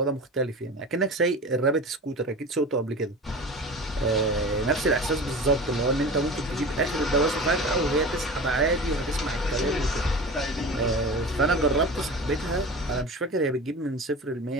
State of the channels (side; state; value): both; normal; correlation 0.33